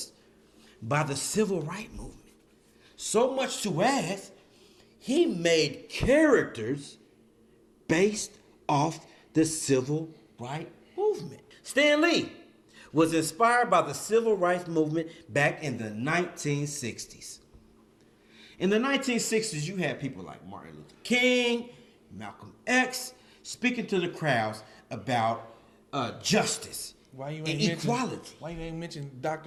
by the civil rights movement. So much to as he made characters based off the civil rights movement. Stan Lee was inspired by the civil rights movement back in the 1960s. In the 1960s, you had people like Martin Luther King, Malcolm X, speaking to the crowds about justice and equality. Why you ain't mention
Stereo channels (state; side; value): identical; both; correlation 1.00